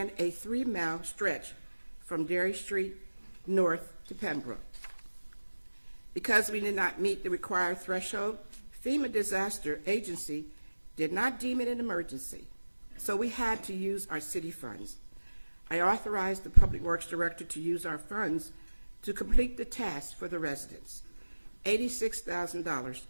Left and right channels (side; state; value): both; inverted; correlation -1.00